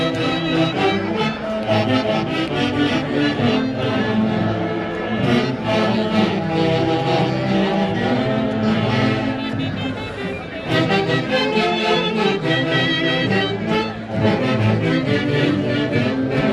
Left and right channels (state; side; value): identical; both; correlation 1.00